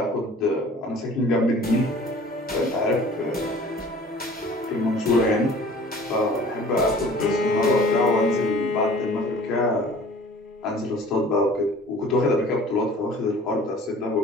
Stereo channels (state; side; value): normal; both; correlation 0.48